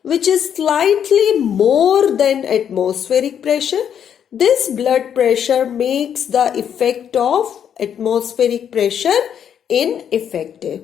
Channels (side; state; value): right; quieter; 8.7 dB